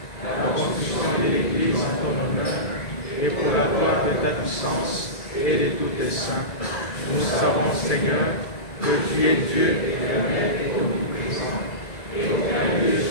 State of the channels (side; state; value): right; late; 1.9 ms